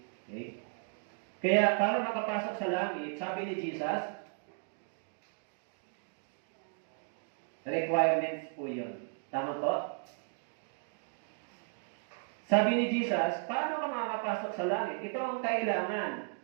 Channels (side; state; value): left; silent; 54 dB below the other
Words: Okay? Kaya para makapasok sa langit, sabi ni Jesus, requirements po yun. Tama po? Sabi ni Jesus, paano ka makakapasok sa langit? Ito ang kailangan.